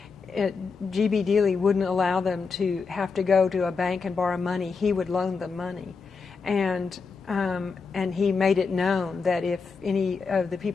G.B. Dealey wouldn't allow them to have to go to a bank and borrow money. He would loan them money. And he made it known that if any of the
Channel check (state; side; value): quieter; right; 4.9 dB